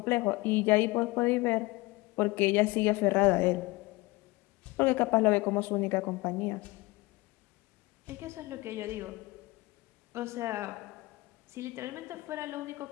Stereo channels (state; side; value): quieter; right; 22.0 dB